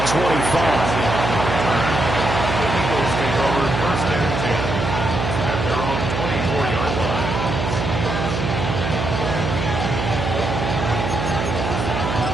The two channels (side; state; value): right; noise; hum, 2 dB below the sound